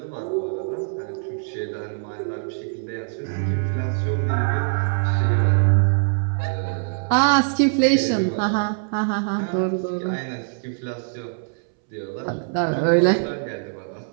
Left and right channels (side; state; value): left; silent; 63 dB below the other